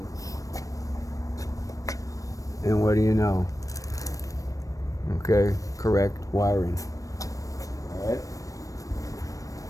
And what do you know? Okay, correct wiring. All right.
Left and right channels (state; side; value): late; right; 0.16 ms